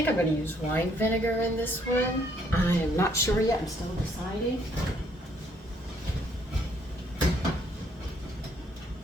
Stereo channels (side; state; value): both; normal; correlation 0.67